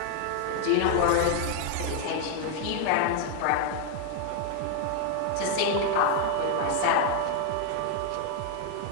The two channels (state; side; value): different; both; correlation 0.00